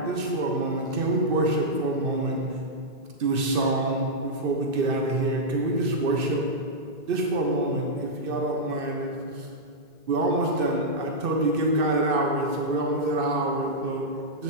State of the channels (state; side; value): late; left; 2.6 ms